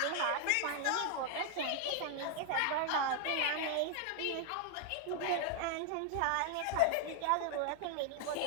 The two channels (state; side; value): different; both; correlation 0.00